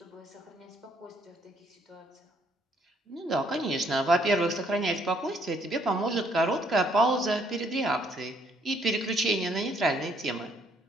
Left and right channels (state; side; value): normal; both; correlation 0.67